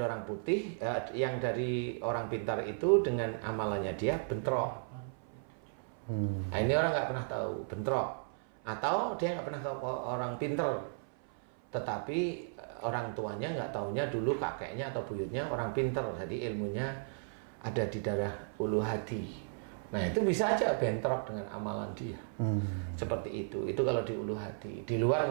putih, yang dari orang pintar itu dengan amalannya dia bentrok. Nah ini orang nggak pernah tahu, bentrok. Atau dia nggak pernah ke orang pinter, tetapi orang tuanya nggak taunya dulu kakeknya atau buyutnya orang pinter, jadi ilmunya ada di darah ulu hati. Nah itu bisa aja bentrok dengan amalan dia. Seperti itu kalau di ulu hati. Di luar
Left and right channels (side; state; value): left; silent; 55 dB below the other